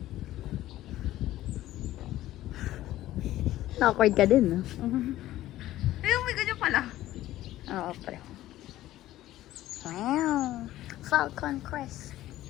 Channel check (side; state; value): right; quieter; 14.7 dB